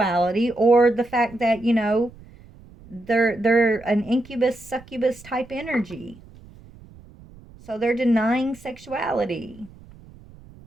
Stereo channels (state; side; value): noise; right; rumble, 22 dB below the sound